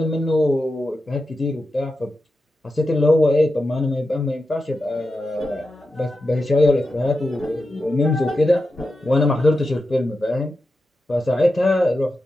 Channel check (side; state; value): both; normal; correlation 0.90